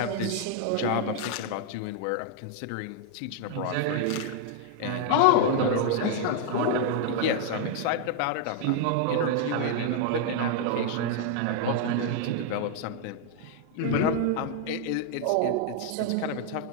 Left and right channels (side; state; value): both; different; correlation 0.00